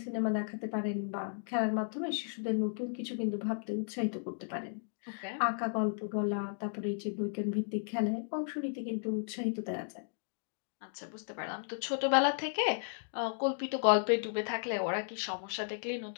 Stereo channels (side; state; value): right; silent; digital silence